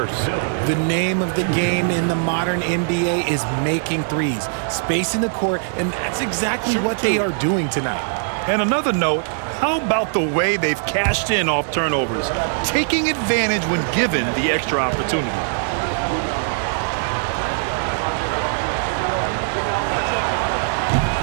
The name of the game in the modern NBA is making threes, spacing the court, and that's exactly what they are doing tonight. And another note, how about the way they've cashed in off turnovers, taking advantage when given the extra opportunity.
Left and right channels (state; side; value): silent; left; 63 dB below the other